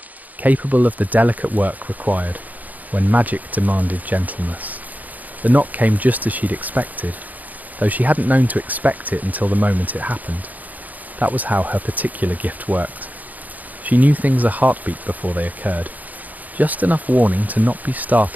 capable of the delicate work required when magic demanded gentleness. The knock came just as she'd expected, though she hadn't known to expect it until the moment it happened. That was how her particular gift worked. She knew things a heartbeat before they occurred. Just enough warning to not be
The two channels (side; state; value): left; late; 0.080 ms